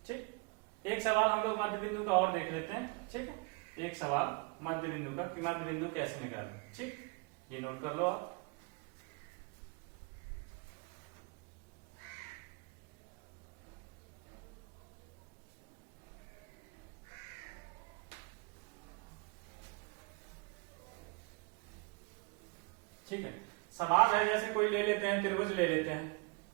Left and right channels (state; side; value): quieter; left; 29.4 dB